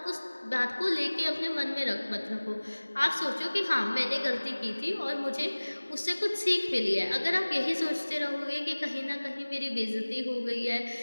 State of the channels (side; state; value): both; inverted; correlation -1.00